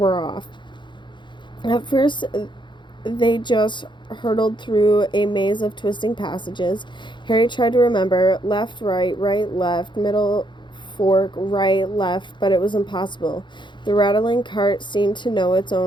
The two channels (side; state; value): right; late; 0.23 ms